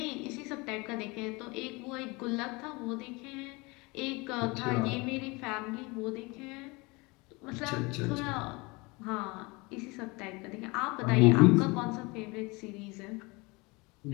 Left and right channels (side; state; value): right; quieter; 25.8 dB